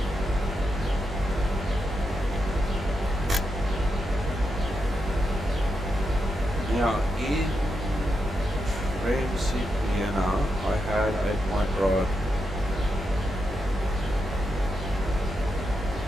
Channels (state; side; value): normal; both; correlation 0.85